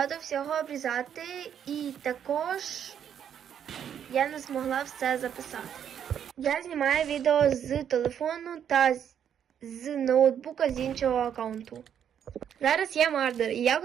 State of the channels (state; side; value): quieter; left; 8.9 dB